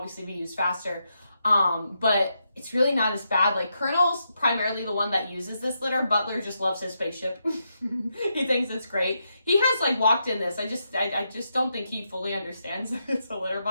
be used faster. But it's really not as bad. Like Colonel's primarily the one that uses this litter. Butler just loves his spaceship. He thinks it's great. He has like walked in this. I just don't think he fully understands that it's a litter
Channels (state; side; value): inverted; both; correlation -0.83